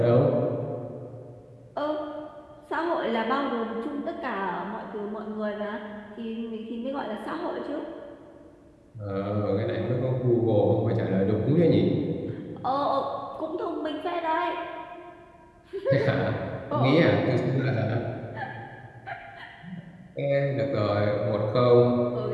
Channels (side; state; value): both; identical; correlation 1.00